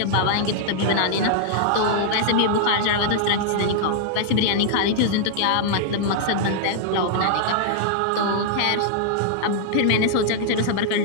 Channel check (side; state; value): both; different; correlation -0.01